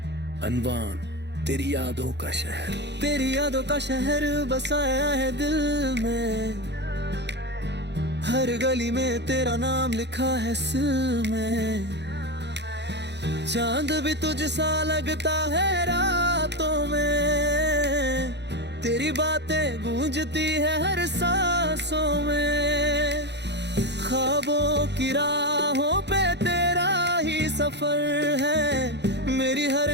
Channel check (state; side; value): late; left; 0.50 ms